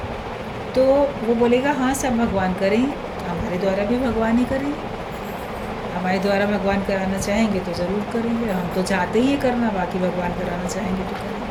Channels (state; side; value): identical; both; correlation 1.00